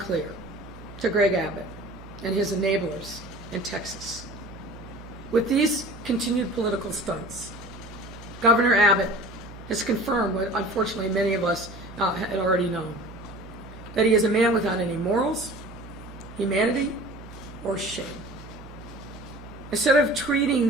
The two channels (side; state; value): right; noise; hum, 16 dB below the sound